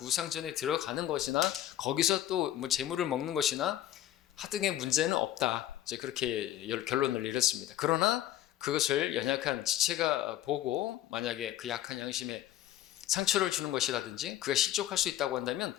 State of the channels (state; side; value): quieter; right; 12.7 dB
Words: 우상 전에 들어가는 것이나 거기서 또 뭐 제물을 먹는 것이나 하등의 문제는 없다, 이제 그렇게 결론을 내렸습니다. 그러나 그것을 연약한 지체가 보고 만약에 그 약한 양심에 상처를 주는 것이라든지 그가 실족할 수 있다고 한다면